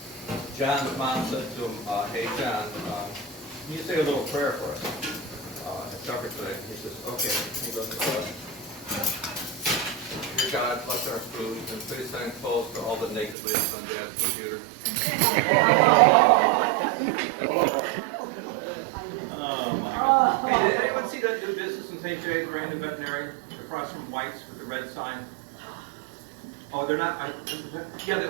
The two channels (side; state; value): left; drops out; at 13.4 s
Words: John's mom said to him, hey, John, can you say a little prayer for us at supper today? He says, okay. He goes, dear God, bless our food, and please send clothes to all the naked ladies on Dad's computer. Oh, my God. Hey, did anyone see that new business in St. Jay, brand new veterinarian, across from White's with the red sign? Oh, they're not, yeah, they